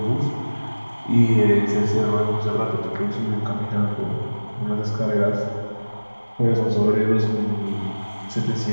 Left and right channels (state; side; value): inverted; both; correlation -1.00